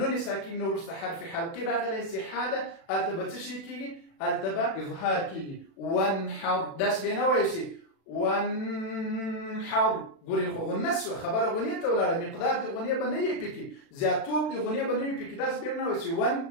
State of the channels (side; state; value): right; late; 36 ms